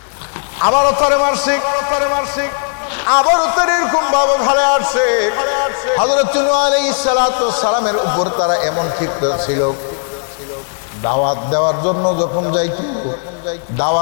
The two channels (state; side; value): silent; right; 66 dB below the other